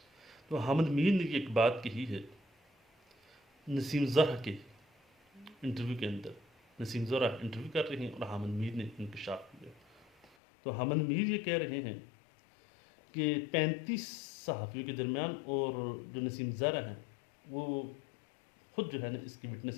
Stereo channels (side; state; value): right; drops out; at 10.4 s